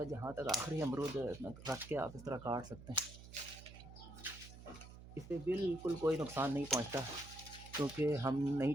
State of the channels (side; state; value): right; noise; hum, 15 dB below the sound